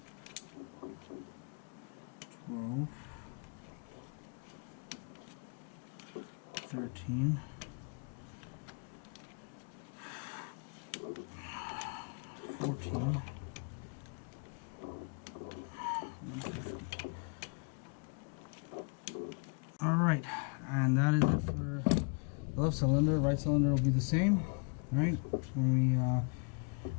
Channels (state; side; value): quieter; right; 38.6 dB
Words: 12. 13. 14. And 15. Alright, and that is it for the left cylinder. Right cylinder will be the same. Alright, when